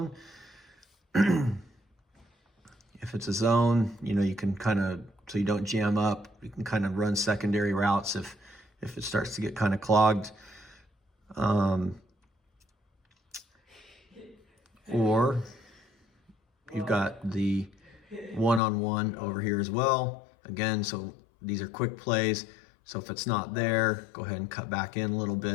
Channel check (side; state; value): right; drops out; at 18.6 s